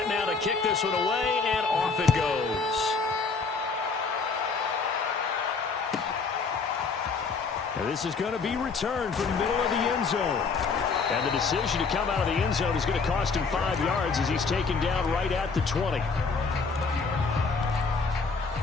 now to kick this one away, and off it goes. And this is going to be returned from the middle of the end zone. And the decision to come out of the end zone is going to cost him 5 yards as he's taken down right at the 20.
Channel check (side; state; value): right; quieter; 4.8 dB